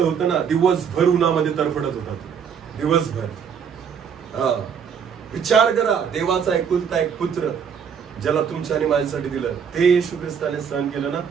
होतं ना, दिवसभर उन्हामध्ये तरफडत होता तो. दिवसभर. विचार करा, देवाचा एकुलता एक पुत्र ज्याला तुमच्या आणि माझ्यासाठी दिलं, ते येशू ख्रिस्ताने सहन केलं ना,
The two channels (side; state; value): left; quieter; 7.2 dB